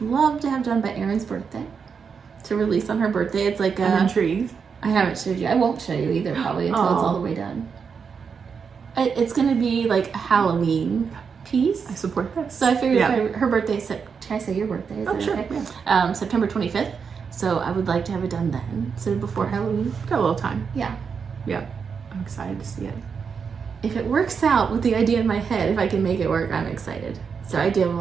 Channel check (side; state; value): left; quieter; 6.1 dB